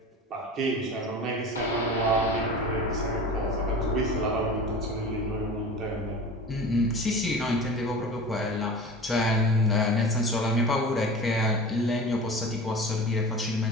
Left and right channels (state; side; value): normal; both; correlation 0.35